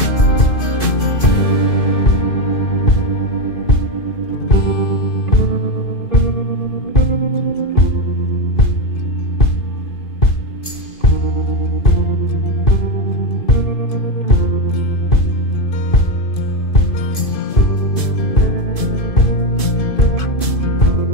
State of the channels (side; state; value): right; late; 2.5 ms